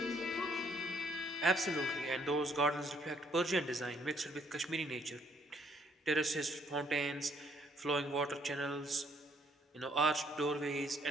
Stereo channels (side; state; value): both; normal; correlation 0.67